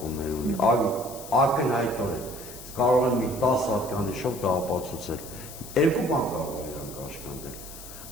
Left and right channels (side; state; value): left; noise; hiss, 14 dB below the sound